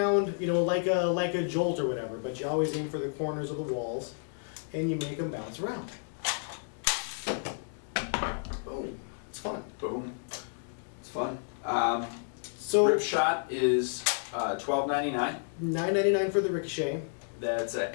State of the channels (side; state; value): right; silent; digital silence